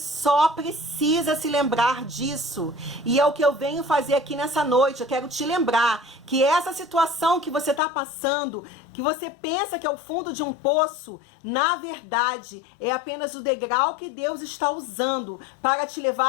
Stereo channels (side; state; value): right; drops out; at 7.8 s